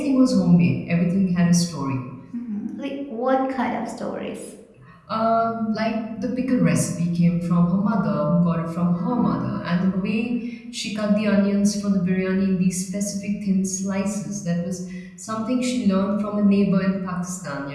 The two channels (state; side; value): identical; both; correlation 1.00